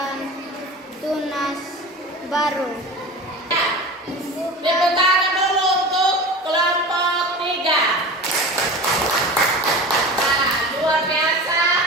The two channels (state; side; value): normal; both; correlation 0.33